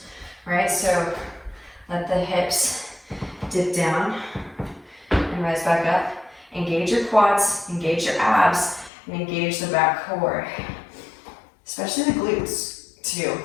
right? So let the hips dip down and rise back up. Engage your quads, engage your abs, and engage the back core. Especially the glutes, too.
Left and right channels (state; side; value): drops out; right; at 8.9 s